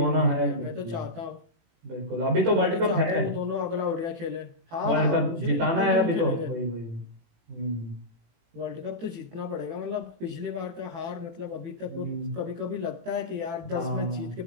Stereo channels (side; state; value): left; late; 18 ms